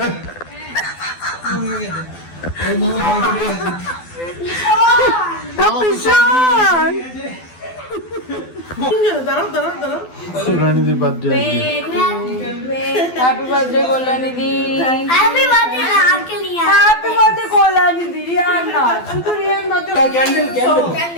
পিছন সোনানিদির বার্থডে হ্যাপি বার্থডে কল্যাণীদি। हैप्पी बर्थडे अंकल यार হ্যাপি বার্থডে কল্যাণীদি। রিয়ান না, শুধু Riyan birthday. Candle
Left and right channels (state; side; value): late; right; 12 ms